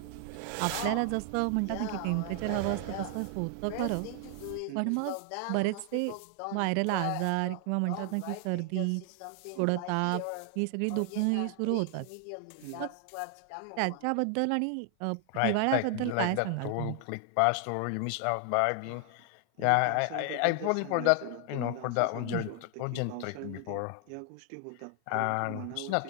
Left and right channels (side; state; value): both; different; correlation 0.00